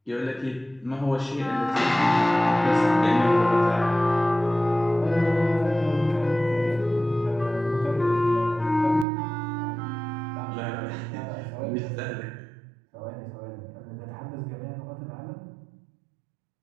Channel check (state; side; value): drops out; left; at 9.1 s